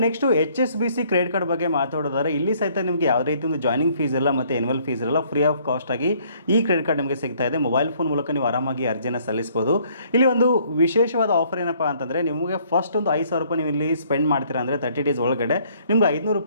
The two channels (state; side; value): inverted; both; correlation -0.63